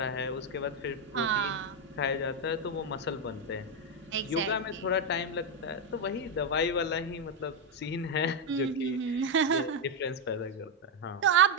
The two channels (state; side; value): normal; both; correlation 0.03